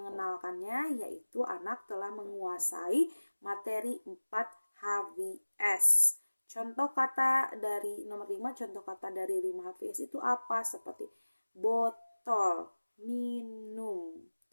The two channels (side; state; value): both; inverted; correlation -1.00